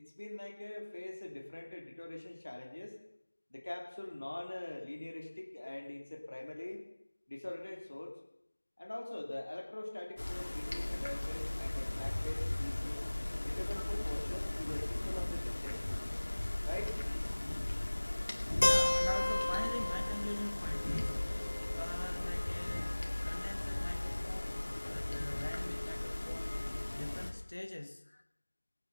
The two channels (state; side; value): inverted; both; correlation -1.00